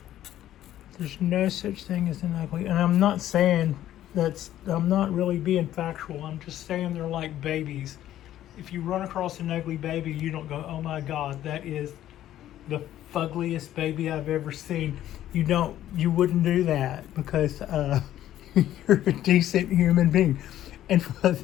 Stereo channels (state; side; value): quieter; right; 12.5 dB